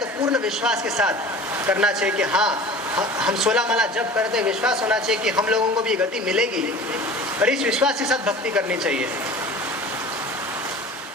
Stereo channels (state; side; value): normal; both; correlation 0.40